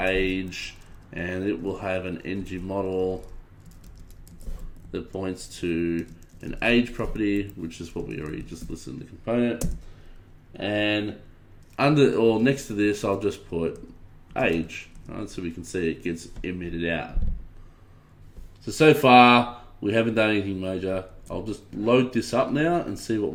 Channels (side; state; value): both; identical; correlation 1.00